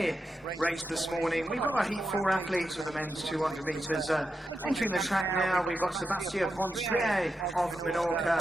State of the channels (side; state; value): both; normal; correlation 0.88